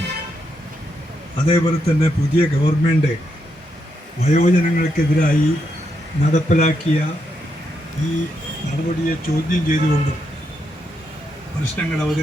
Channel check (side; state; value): both; normal; correlation 0.80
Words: അതേപോലെ തന്നെ പുതിയ ഗവൺമെൻറ് വയോജനങ്ങൾക്കെതിരായി നടപ്പിലാക്കിയ ഈ നടപടിയെ ചോദ്യം ചെയ്തുകൊണ്ടും പ്രശ്നങ്ങൾ